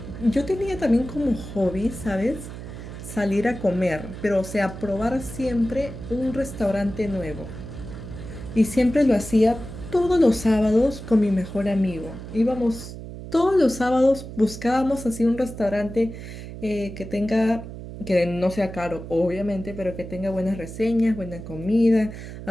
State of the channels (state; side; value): noise; right; hum, 11 dB below the sound